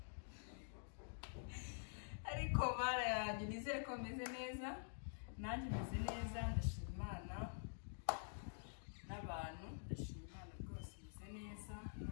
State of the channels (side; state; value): right; silent; digital silence